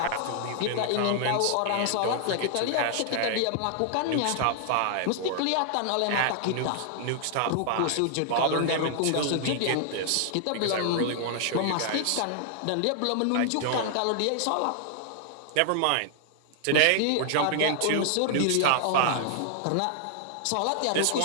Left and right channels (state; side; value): different; both; correlation 0.00